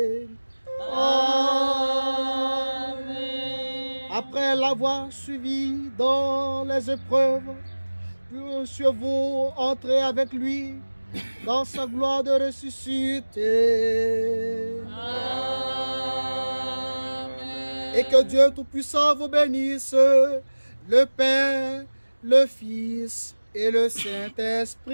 Amen. Après l'avoir suivi dans les épreuves, puissiez-vous entrer avec lui dans sa gloire de ressuscité. Amen. Et que Dieu Tout-Puissant vous bénisse, le Père, le Fils et le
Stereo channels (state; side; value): inverted; both; correlation -1.00